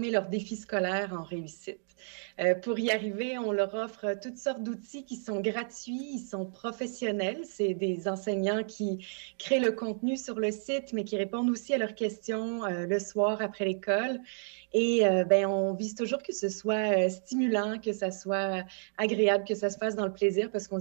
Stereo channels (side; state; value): left; silent; digital silence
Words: leurs défis scolaires en réussite. Pour y arriver, on leur offre toutes sortes d'outils qui sont gratuits, ils sont professionnels. C'est des enseignants qui créent le contenu sur le site, mais qui répondent aussi à leurs questions le soir après l'école. Et on vise toujours que ce soit stimulant, que ça soit agréable, que ça se fasse dans le plaisir, parce qu'on